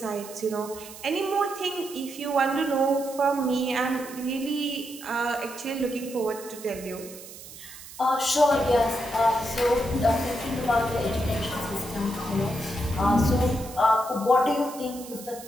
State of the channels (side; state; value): right; noise; hiss, 15 dB below the sound